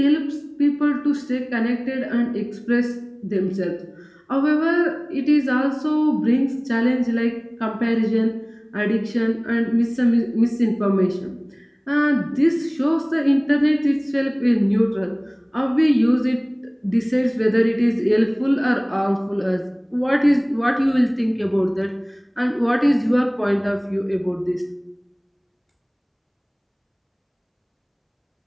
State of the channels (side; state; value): both; identical; correlation 1.00